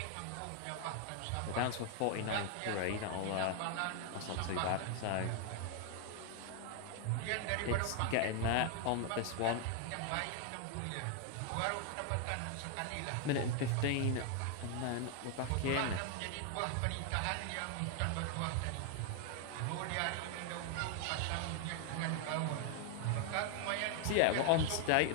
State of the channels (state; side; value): different; both; correlation 0.00